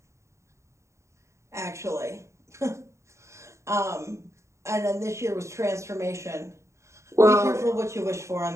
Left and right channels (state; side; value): late; left; 0.14 ms